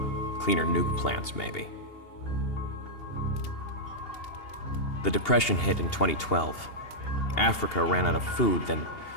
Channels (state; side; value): late; right; 2.8 ms